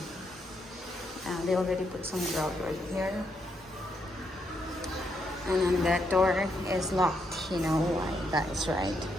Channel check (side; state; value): both; normal; correlation 0.78